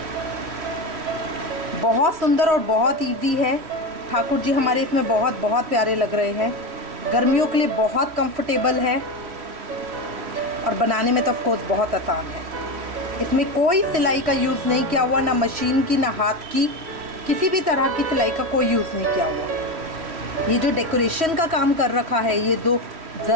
बहुत सुंदर और बहुत इजी है। ठाकुर जी हमारे इसमें बहुत बहुत प्यारे लग रहे हैं। गर्मियों के लिए बहुत कंफर्टेबल है और बनाने में तो ऑफ कोर्स बहुत आसान है। इसमें कोई सिलाई का यूज़ नहीं किया हुआ, ना मशीन की ना हाथ की, किसी भी तरह की सिलाई का कोई यूज़ नहीं किया हुआ। ये जो डेकोरेशन का काम कर रखा है, ये दो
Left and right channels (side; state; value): left; late; 3.1 ms